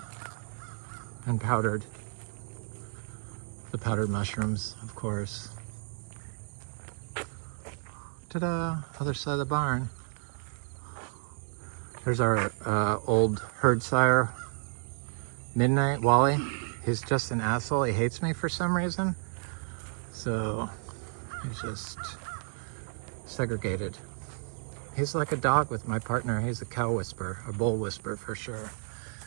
And powdered. The powdered mushrooms, of course. Ta-da! Other side of the barn. There's our old herd sire, Midnight, Wally. He's just an asshole. He hates me for some reason. So he's just segregated. He's like a dog with my partner. He's a cow whisperer, a bull whisperer for sure.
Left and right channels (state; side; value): silent; left; 57 dB below the other